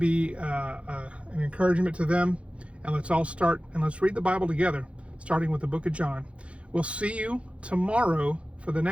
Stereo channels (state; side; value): late; left; 0.061 ms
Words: an encouragement to them. And let's all start and let's read the Bible together, starting with the book of John. We'll see you tomorrow for the